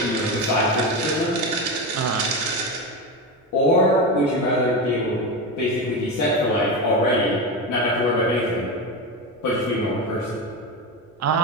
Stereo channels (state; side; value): normal; both; correlation 0.17